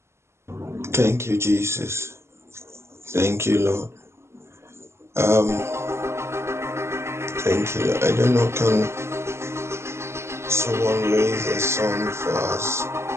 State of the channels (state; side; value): late; left; 0.13 ms